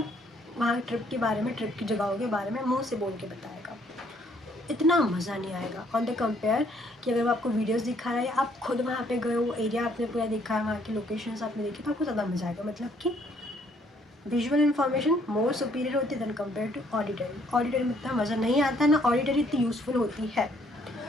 वहाँ ट्रिप के बारे में, ट्रिप की जगहों के बारे में मुंह से बोल के बताएगा. इतना मज़ा नहीं आएगा ऑन द कंपेयर कि अगर वो आपको वीडियोस दिखा रहा है, आप खुद वहाँ पे गए हो, एरिया आपने पूरा देखा है, वहाँ की लोकेशंस आपने देखी, तो आपको ज़्यादा मज़ा आएगा. मतलब कि विजुअल इन्फॉर्मेशन मोर सुपीरियर होती है than compare to auditory. Auditory में इतना मज़ा नहीं आता ना, ऑडिटरी इतनी यूज़फुल होती है.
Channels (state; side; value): normal; both; correlation 0.65